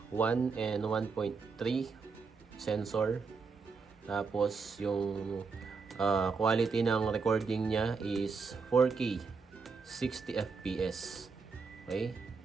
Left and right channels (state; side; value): quieter; left; 4.9 dB